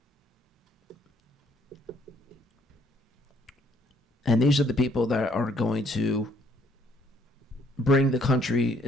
And these are the people that are going to bring the country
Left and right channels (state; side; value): normal; both; correlation 0.65